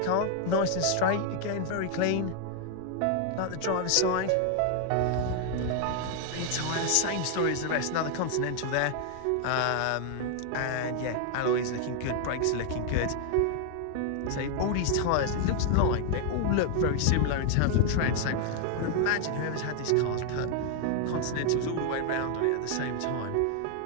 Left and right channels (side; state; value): both; different; correlation 0.00